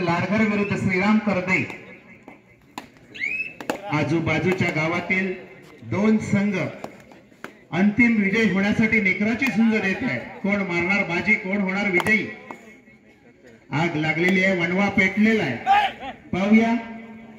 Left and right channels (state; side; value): identical; both; correlation 1.00